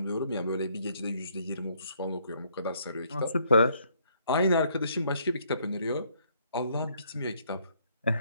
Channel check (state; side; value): inverted; both; correlation -0.67